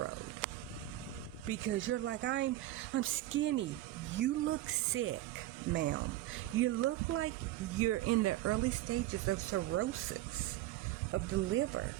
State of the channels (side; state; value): left; quieter; 15.1 dB